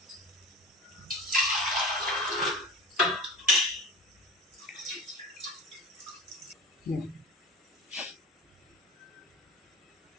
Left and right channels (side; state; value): both; normal; correlation 0.34